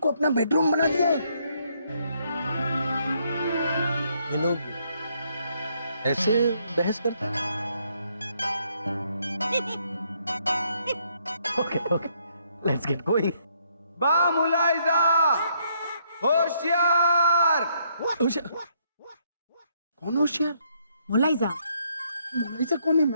अपना बेडरूम बना दिया है। ये लोग ऐसे बहस करते हैं? Okay okay, let's get going. बा मुलाइजा, होशियार। कौन होशियार? मुलाइजा मोनालिसा कौन है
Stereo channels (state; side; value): inverted; both; correlation -0.72